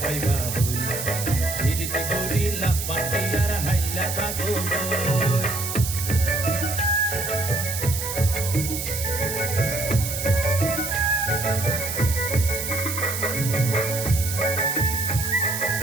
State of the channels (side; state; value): right; noise; hiss, 5 dB below the sound